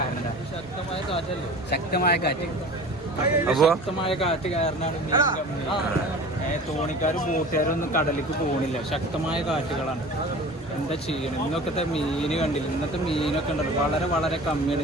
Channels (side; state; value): both; normal; correlation 0.39